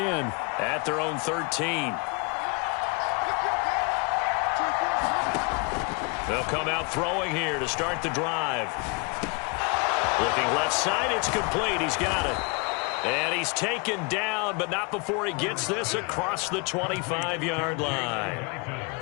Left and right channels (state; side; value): quieter; right; 32.0 dB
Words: At their own 13. They'll come out throwing here to start the drive. Looking left side, it's complete. He's got it. And he's taken down, but not before he gets this across the 25-yard line.